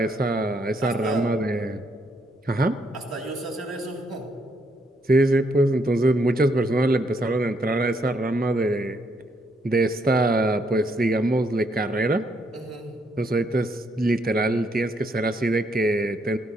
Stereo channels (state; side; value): normal; both; correlation 0.73